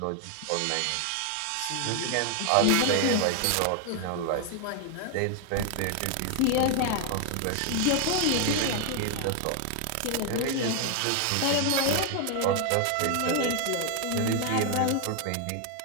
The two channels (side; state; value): both; different; correlation 0.01